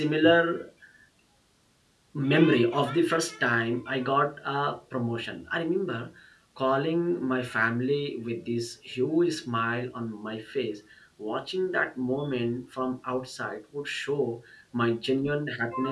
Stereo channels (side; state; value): both; identical; correlation 1.00